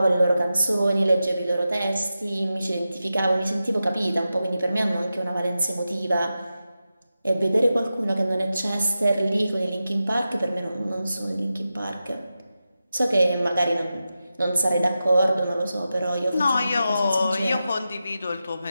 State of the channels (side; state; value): both; inverted; correlation -0.91